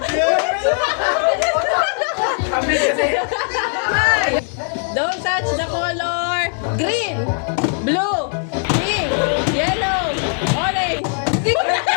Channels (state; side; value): silent; right; 55 dB below the other